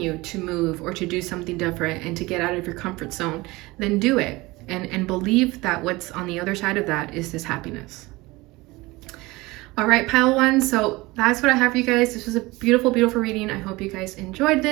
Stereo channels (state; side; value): quieter; left; 21.6 dB